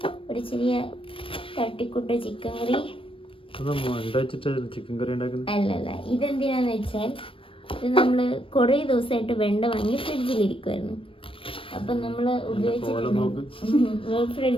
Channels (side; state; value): right; late; 0.26 ms